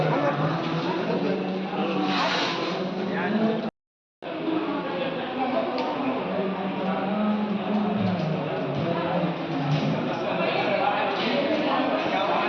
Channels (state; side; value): identical; both; correlation 1.00